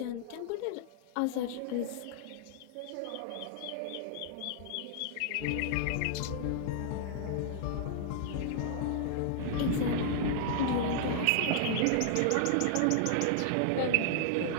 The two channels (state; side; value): different; both; correlation -0.01